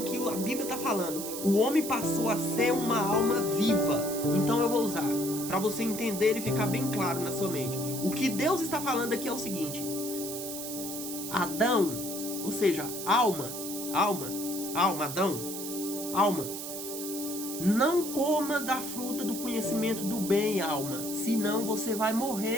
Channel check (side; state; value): right; noise; hiss, 7 dB below the sound